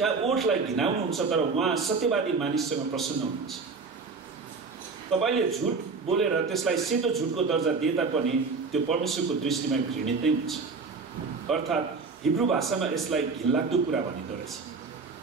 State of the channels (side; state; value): left; quieter; 4.6 dB